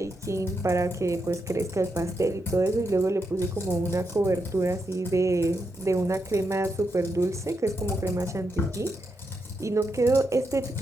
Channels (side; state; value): both; normal; correlation 0.84